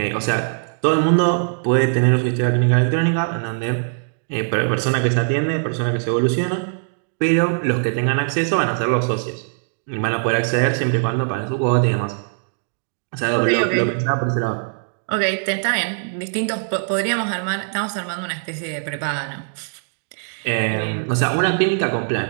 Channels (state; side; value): silent; left; digital silence